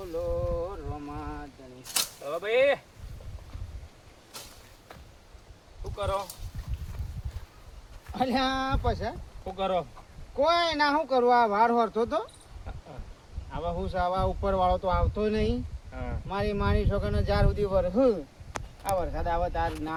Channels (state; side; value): identical; both; correlation 1.00